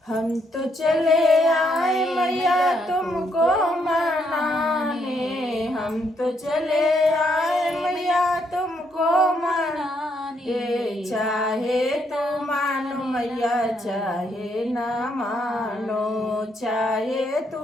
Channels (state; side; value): normal; both; correlation 0.74